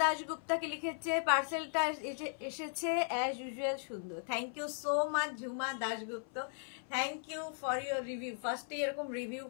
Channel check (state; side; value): silent; right; 53 dB below the other